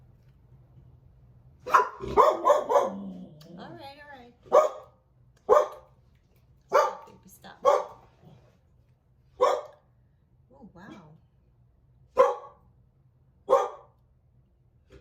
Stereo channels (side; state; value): both; identical; correlation 1.00